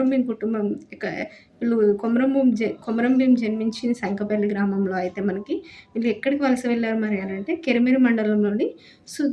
భీం కుటుంబం వీళ్ళు కొమరం భీం జన్మించింది సంకపల్లి గ్రామంలో. అయితే మనకి వీళ్ళు ఎక్కడికి వలస వెళ్ళారు మరి అని అంటే కెరమెరు మండలంలోని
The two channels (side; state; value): both; identical; correlation 1.00